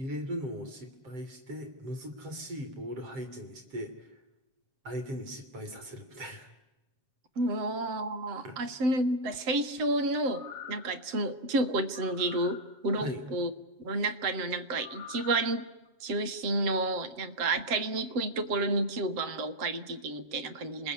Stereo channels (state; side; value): late; left; 7.8 ms